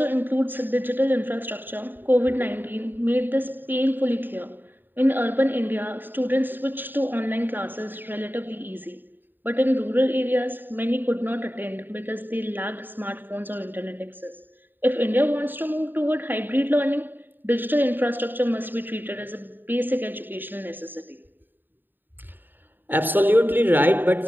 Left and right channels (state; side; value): late; left; 0.093 ms